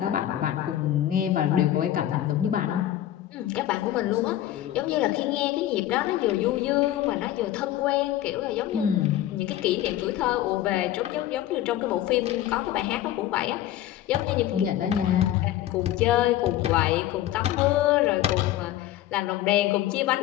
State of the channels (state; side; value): quieter; right; 13.1 dB